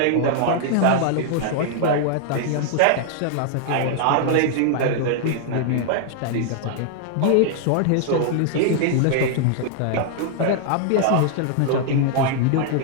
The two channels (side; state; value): both; different; correlation 0.00